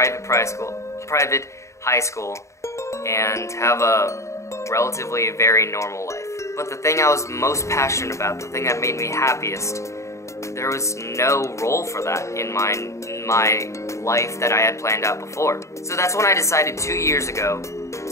high school, and have a relatively very normal life. But the thing I was most passionate about, the thing that made me happiest, there was no role for that in my life that I had planned out before. So that's when I decided 2 years ago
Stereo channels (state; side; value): late; right; 0.14 ms